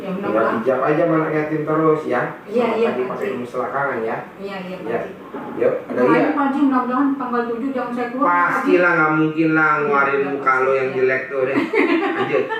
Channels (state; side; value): identical; both; correlation 1.00